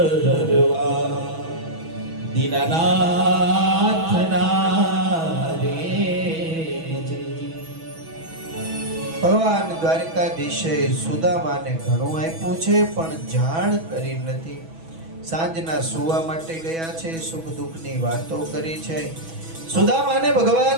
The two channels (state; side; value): late; left; 6.1 ms